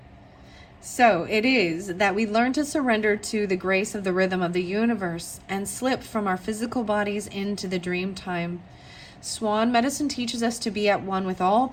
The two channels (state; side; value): identical; both; correlation 1.00